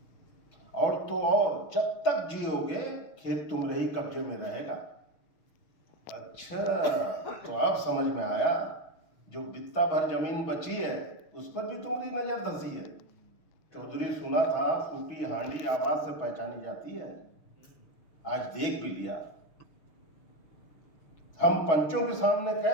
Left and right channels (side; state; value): right; late; 6.2 ms